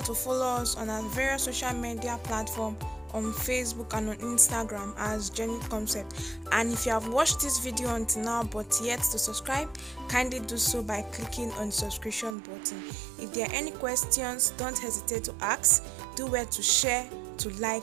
to follow us on our various social media platforms on Facebook and on Instagram as Genuine Concept. And if you have watched this video until now but yet to subscribe, kindly do so by clicking on the subscription button. If there are any questions, don't hesitate to ask. Do well to share, to like,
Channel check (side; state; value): left; drops out; at 12.4 s